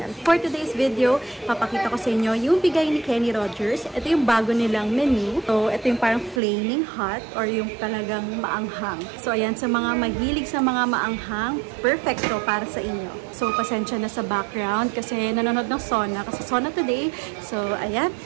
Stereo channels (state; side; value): drops out; left; at 6.4 s